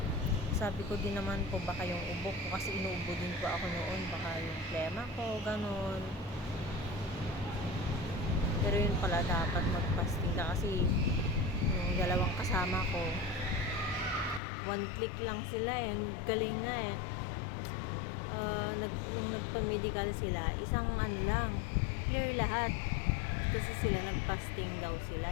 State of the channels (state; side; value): drops out; right; at 14.4 s